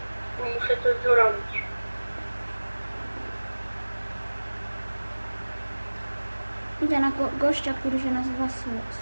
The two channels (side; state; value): both; inverted; correlation -1.00